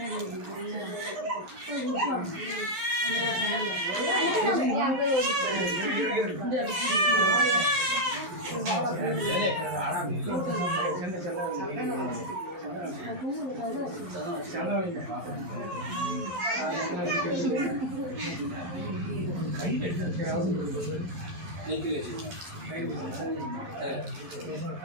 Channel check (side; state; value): left; late; 11 ms